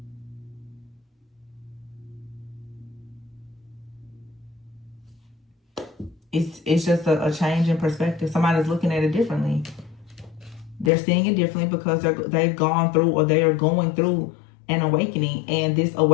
It's just a change in perspective. Somebody's looking at it differently. They're seeing it differently because they've gone through or they are going through an awakening. And this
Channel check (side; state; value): right; drops out; at 10.9 s